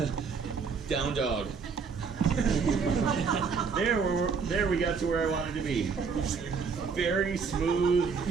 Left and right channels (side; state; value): left; quieter; 5.5 dB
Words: Down dog. There we got to where I wanted to be. Very smooth,